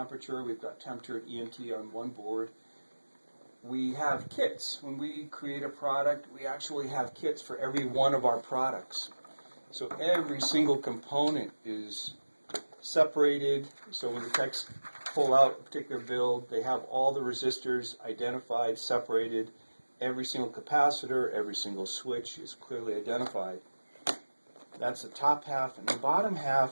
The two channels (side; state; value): both; inverted; correlation -1.00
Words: We've got temperature and EMT on one board. We have kits. When we create a product, we actually have kits for every one of our products. So every single component is separated. So when the techs pull out a particular build, they have all the resistors identified, separated. Every single capacitor, every single switch is clearly identified. That's the top half, and the bottom